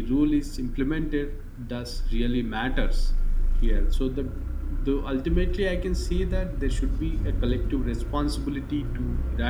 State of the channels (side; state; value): both; identical; correlation 1.00